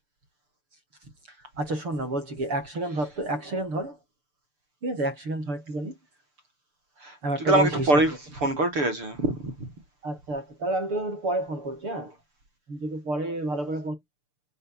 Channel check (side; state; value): left; late; 6.8 ms